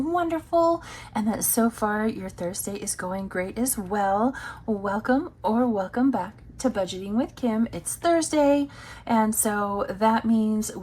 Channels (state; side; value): identical; both; correlation 1.00